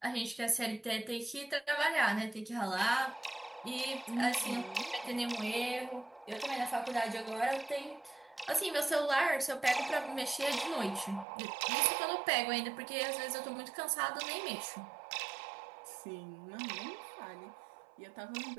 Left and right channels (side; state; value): left; drops out; at 11.2 s